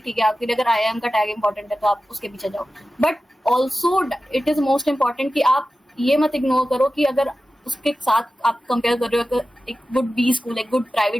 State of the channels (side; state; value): both; normal; correlation 0.94